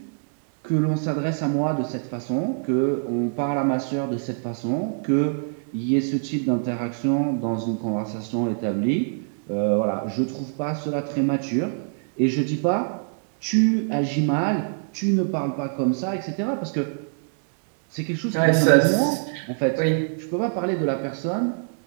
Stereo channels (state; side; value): silent; left; digital silence